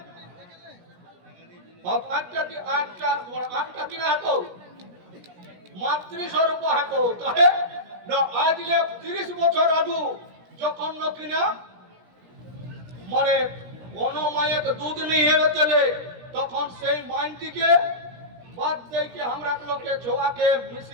আটটা কিনা হাতো মাতৃস্বরূপ হাতো কাহে ন আজ 30 বছর আগু যখন ন কিনা মানে কোন মায়ের দুধ নিয়ে চলে তখন সেই মাইনটিকে বাদ দেইকে আমরা লোকে ছোয়াকে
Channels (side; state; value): left; late; 17 ms